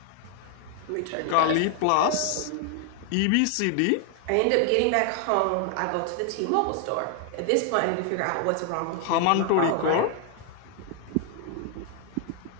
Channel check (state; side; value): different; both; correlation 0.00